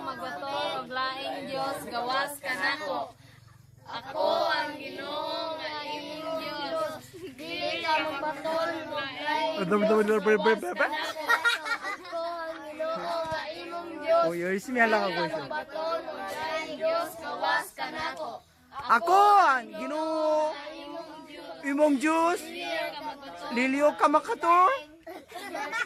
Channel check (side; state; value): both; identical; correlation 1.00